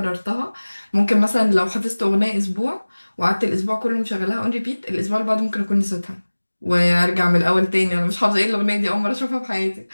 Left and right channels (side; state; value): both; inverted; correlation -1.00